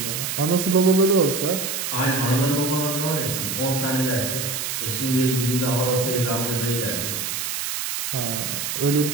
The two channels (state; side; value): noise; right; hiss, 3 dB below the sound